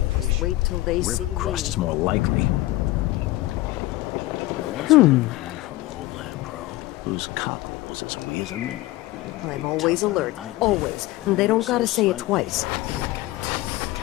wait till they River see crust me. is more likely. There once was a man from Old Land Pro whose cock was as wee as a minnow. I'm always alert. Always. And they don't gotta say it twice.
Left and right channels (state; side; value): quieter; right; 18.0 dB